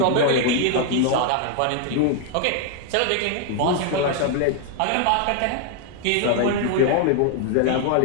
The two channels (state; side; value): different; both; correlation 0.00